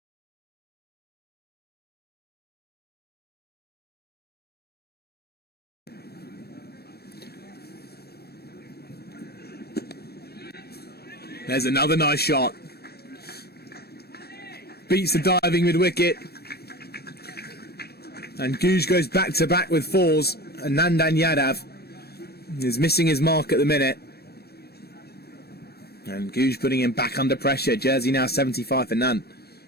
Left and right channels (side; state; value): right; late; 0.47 ms